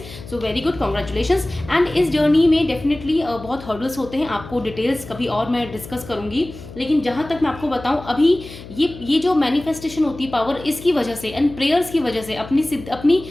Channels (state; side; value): noise; left; hum, 15 dB below the sound